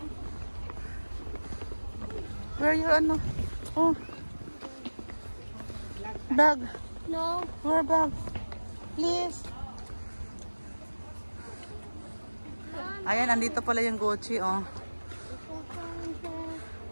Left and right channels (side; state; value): both; inverted; correlation -1.00